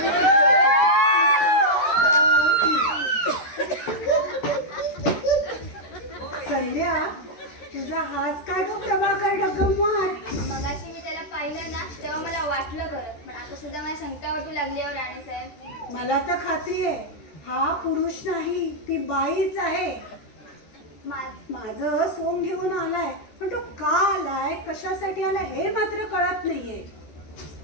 संध्या तुझा हाच काय गं प्रभाकर डगमवार. मगाशी मी त्याला पाहिलं ना तेव्हा मला वाटलं खरं, पण आता सुद्धा मला शंका वाटू लागली हो राणी साहेब. मला तर खात्री आहे हा पुरुष नाही ती बाईच आहे. माझं सोंग घेऊन आलाय, पण तो का आलाय कशासाठी आलाय हे मात्र कळत नाहीये.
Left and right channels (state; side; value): late; right; 13 ms